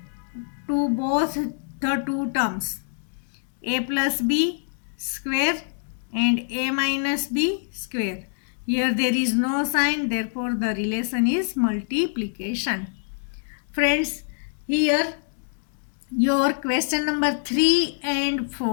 to both the two terms a plus b square and a minus b square. Here there is no sign, therefore the relation is multiplication. Friends, here your question number 3 and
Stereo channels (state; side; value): silent; right; digital silence